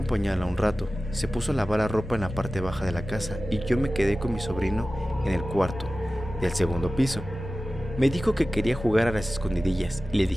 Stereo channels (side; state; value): both; normal; correlation 0.95